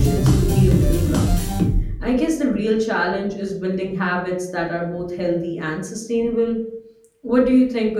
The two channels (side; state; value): both; identical; correlation 1.00